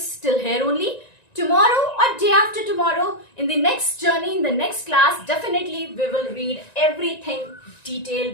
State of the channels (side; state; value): right; late; 1.9 ms